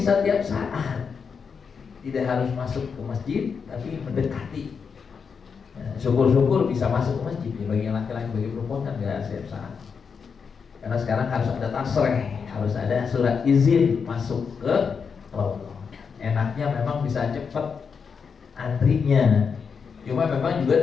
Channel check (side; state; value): right; quieter; 6.0 dB